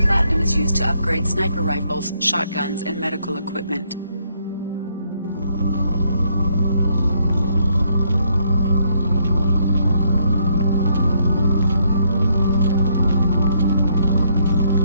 is used to upgrade sniper rifles, shotguns, and medical equipment.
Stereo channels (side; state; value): both; inverted; correlation -0.72